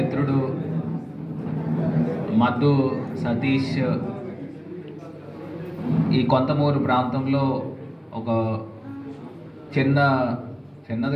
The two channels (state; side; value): identical; both; correlation 1.00